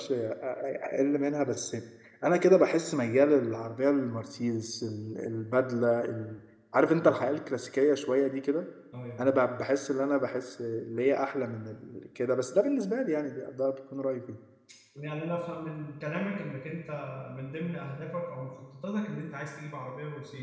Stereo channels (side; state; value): both; identical; correlation 1.00